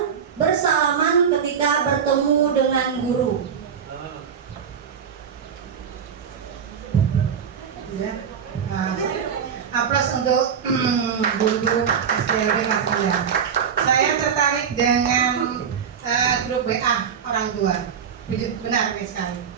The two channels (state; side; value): quieter; left; 7.3 dB